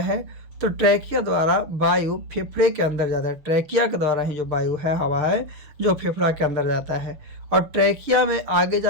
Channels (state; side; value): late; left; 6.6 ms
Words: है? तो ट्रैकिया द्वारा वायु फेफड़े के अंदर जाता है। ट्रैकिया के द्वारा ही जो वायु है, हवा है, जो फेफड़ा के अंदर जाता है। और ट्रैकिया में आगे